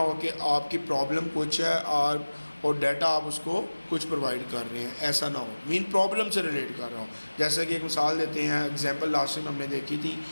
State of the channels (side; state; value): both; inverted; correlation -1.00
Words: कि आपकी प्रॉब्लम कुछ है और डाटा आप उसको कुछ प्रोवाइड कर रहे हैं, ऐसा ना हो, मीन प्रॉब्लम से रिलेट कर रहा हो। जैसा कि एक मिसाल देते हैं, एग्जांपल लास्ट टाइम हमने देखी थी